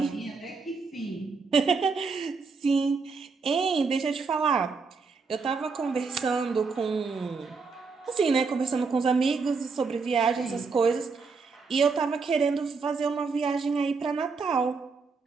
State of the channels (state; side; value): quieter; left; 4.7 dB